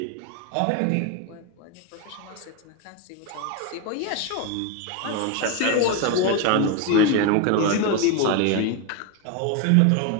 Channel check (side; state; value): both; different; correlation 0.02